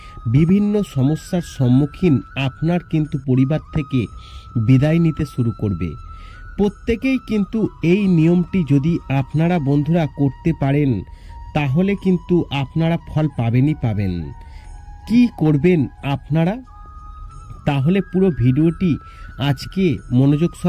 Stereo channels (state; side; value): identical; both; correlation 1.00